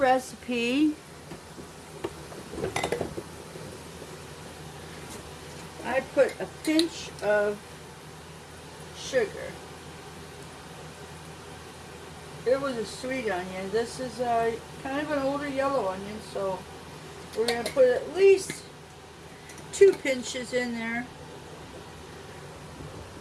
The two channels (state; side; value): identical; both; correlation 1.00